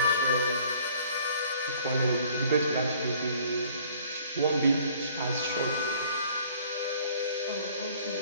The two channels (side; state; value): both; inverted; correlation -0.55